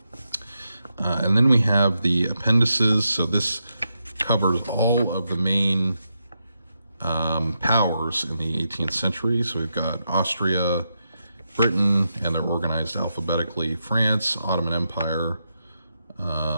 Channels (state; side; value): inverted; both; correlation -0.85